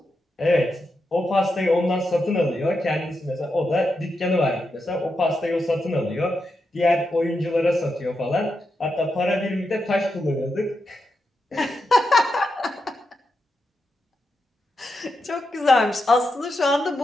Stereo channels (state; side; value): normal; both; correlation 0.86